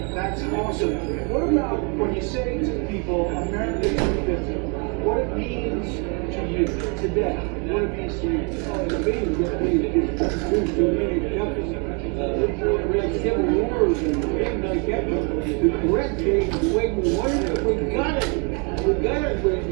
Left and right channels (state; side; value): quieter; left; 35.0 dB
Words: That's awesome. What about when you say to people, America 250, what it means to you today? What it means to you? The means that we do so many countries. We had civil wars and things like that. The correct thing, the way we wanted it, we got it. We got it.